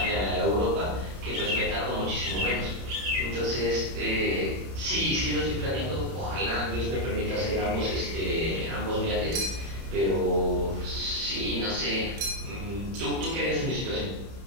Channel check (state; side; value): late; left; 30 ms